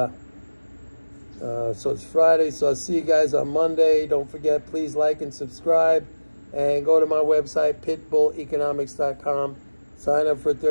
it's Friday, so I'll see you guys on Monday. Don't forget, please like and subscribe. And go to my website, pitbulleconomics.com. Sign up for a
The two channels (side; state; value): both; inverted; correlation -1.00